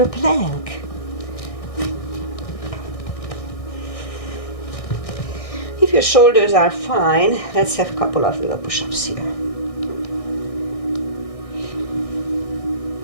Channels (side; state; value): right; late; 1.6 ms